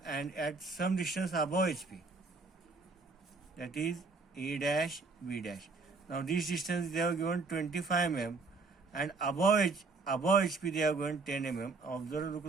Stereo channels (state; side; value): quieter; left; 4.0 dB